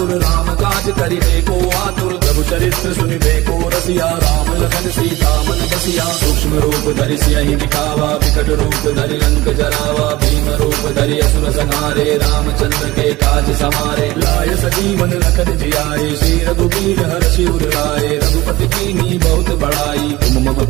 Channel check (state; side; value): quieter; left; 18.9 dB